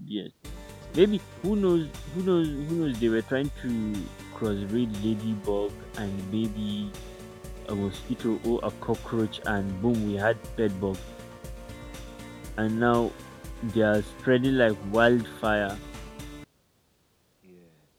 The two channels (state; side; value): identical; both; correlation 1.00